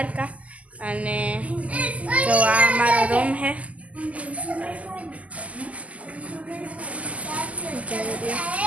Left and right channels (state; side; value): late; left; 0.070 ms